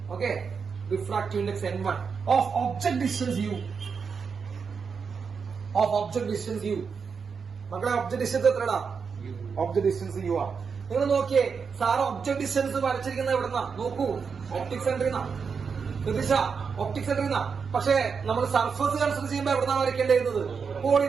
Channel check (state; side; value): quieter; left; 5.8 dB